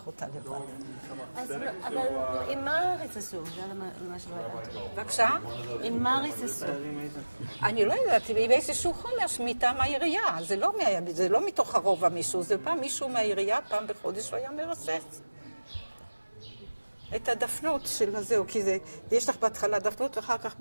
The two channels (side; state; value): both; inverted; correlation -1.00